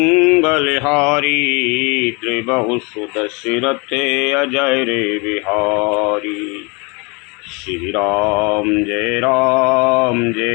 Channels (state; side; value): quieter; right; 29.9 dB